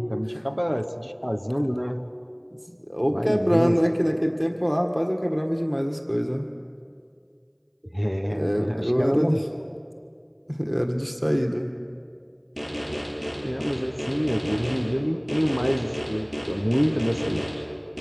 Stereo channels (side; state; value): both; identical; correlation 1.00